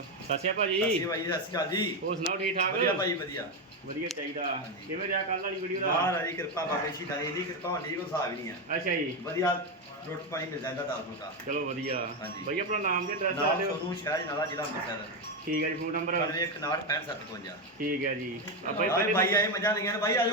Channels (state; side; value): normal; both; correlation 0.09